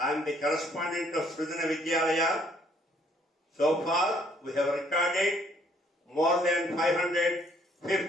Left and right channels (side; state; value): both; normal; correlation 0.65